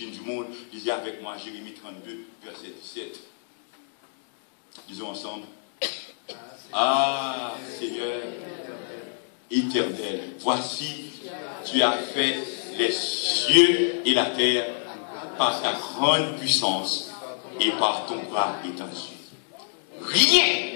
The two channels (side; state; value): right; silent; digital silence